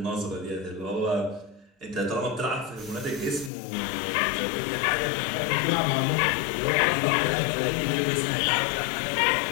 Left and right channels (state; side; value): drops out; right; at 3.5 s